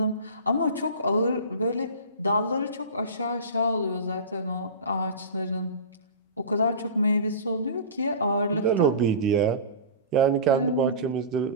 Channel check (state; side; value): inverted; both; correlation -0.32